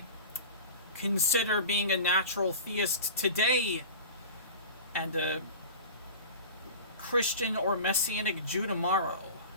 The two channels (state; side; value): inverted; both; correlation -0.35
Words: Consider being a natural theist today and a Christian or Messianic Jew tomorrow.